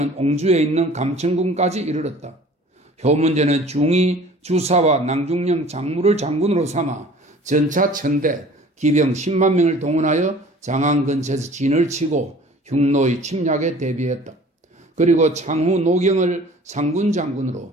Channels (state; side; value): normal; both; correlation 0.48